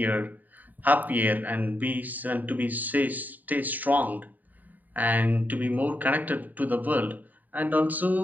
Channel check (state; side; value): late; left; 0.083 ms